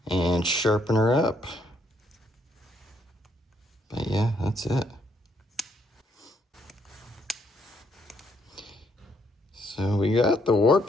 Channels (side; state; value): both; normal; correlation 0.72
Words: and sharpen her up. But yeah. yeah, that's it. So we got the warp